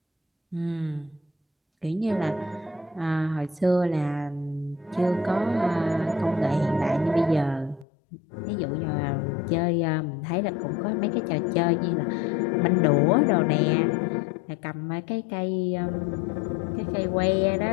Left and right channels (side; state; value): right; drops out; at 7.9 s